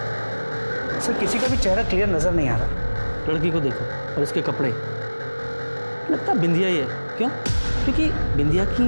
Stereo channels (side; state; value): both; inverted; correlation -1.00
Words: सर किसी का भी चेहरा क्लियर नजर नहीं आ रहा। लड़की को देखो और इसके कपड़े, लगता बिंदिया ही है। क्यों? क्योंकि बिंदिया